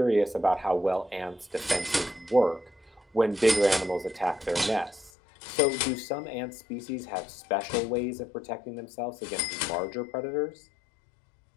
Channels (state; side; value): drops out; right; at 5.1 s